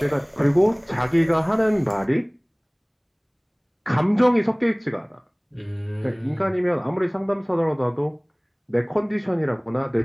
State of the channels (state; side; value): identical; both; correlation 1.00